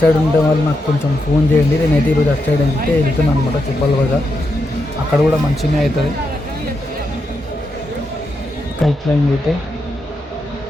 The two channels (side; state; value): both; normal; correlation 0.84